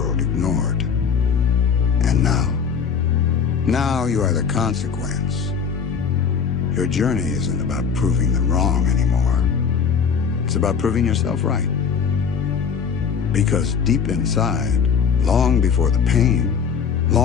ignored. And now you are the consequence. Your journey isn't about proving them wrong anymore. It's about proving yourself right. Because deep inside, long before the pain,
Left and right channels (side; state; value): right; quieter; 6.6 dB